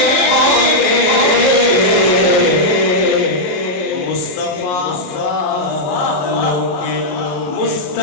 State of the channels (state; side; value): late; right; 28 ms